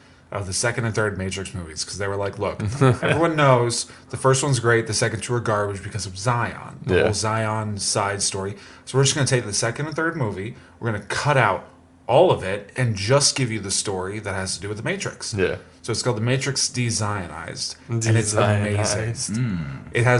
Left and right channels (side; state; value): both; identical; correlation 1.00